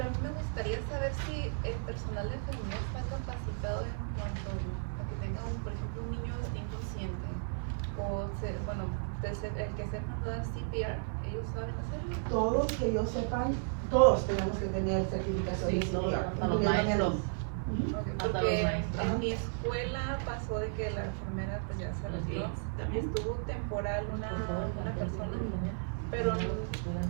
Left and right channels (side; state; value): left; silent; digital silence